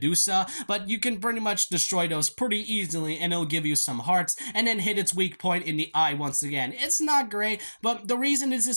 but you can pretty much destroy those pretty easily, and it'll give you some hearts, and then hit its weak point in the eye once again. It's not great, but the reason this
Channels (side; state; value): both; inverted; correlation -1.00